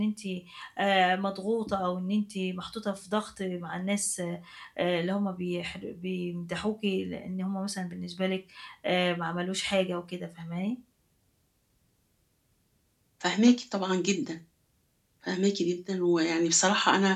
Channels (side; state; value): both; identical; correlation 1.00